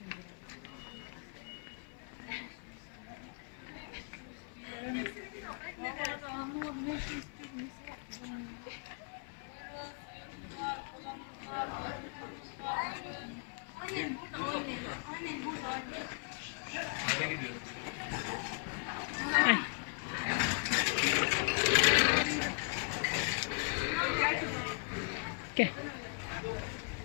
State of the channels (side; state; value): right; quieter; 39.1 dB